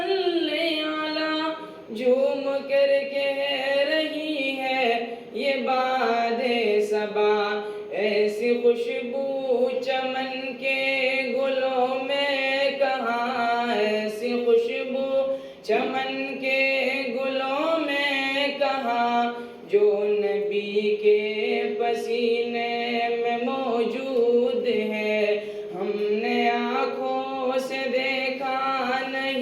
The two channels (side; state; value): both; identical; correlation 1.00